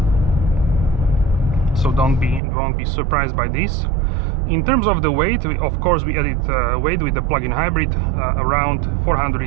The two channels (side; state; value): left; drops out; at 2.4 s